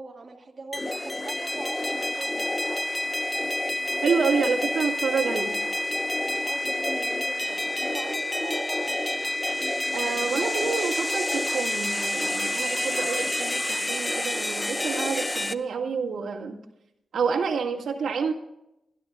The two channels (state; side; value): normal; both; correlation 0.91